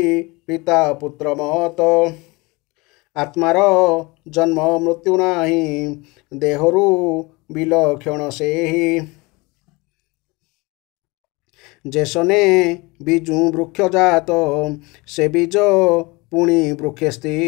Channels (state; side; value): quieter; right; 24.8 dB